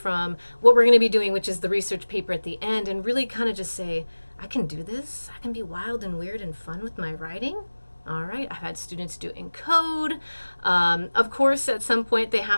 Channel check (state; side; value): inverted; both; correlation -1.00